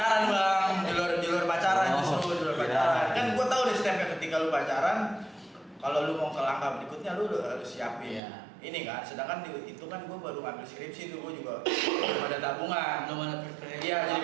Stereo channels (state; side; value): drops out; left; at 8.2 s